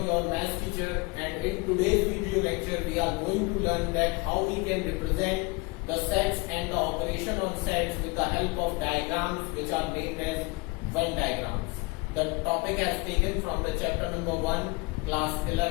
your maths teacher, and in today's video lecture we are going to learn that how we can represent the sets and the operation on sets with the help of diagrams which are named as Venn diagrams. The topic has taken from the chapter number 1, class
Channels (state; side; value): quieter; right; 26.8 dB